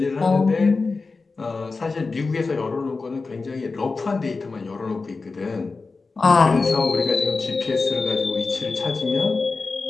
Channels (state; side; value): quieter; right; 4.1 dB